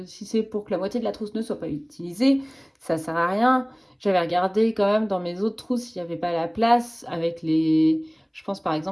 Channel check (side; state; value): both; identical; correlation 1.00